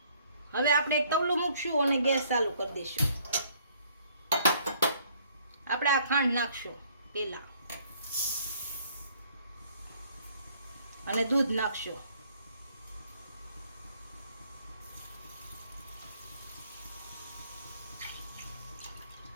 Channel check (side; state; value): both; inverted; correlation -0.63